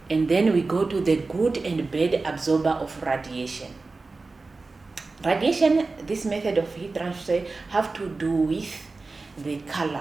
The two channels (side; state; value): left; quieter; 3.7 dB